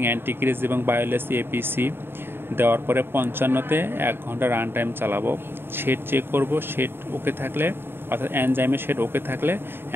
অ্যান্টিক্রিজ এবং বায়োলেস এপিসি দেওয়ার পরে 55-তে 1 ঘন্টা রান টাইম চালাবো। শেড চেক করব, শেড ওকে থাকলে অর্থাৎ এনজাইমের শেড ওকে থাকলে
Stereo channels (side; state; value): left; late; 0.11 ms